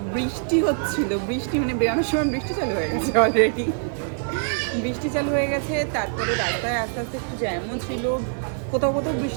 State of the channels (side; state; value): left; silent; 60 dB below the other